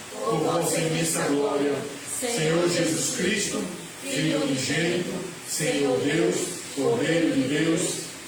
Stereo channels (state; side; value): identical; both; correlation 1.00